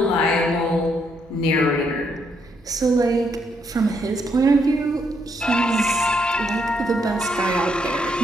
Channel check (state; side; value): normal; both; correlation 0.75